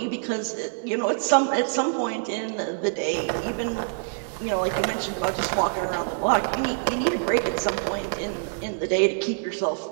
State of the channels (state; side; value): silent; left; digital silence